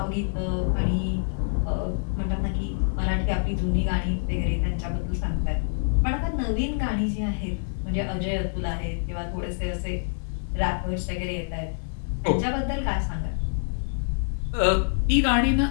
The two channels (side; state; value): right; silent; digital silence